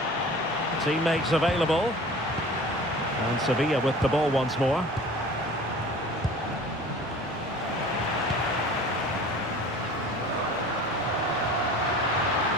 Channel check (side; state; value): left; noise; hum, 28 dB below the sound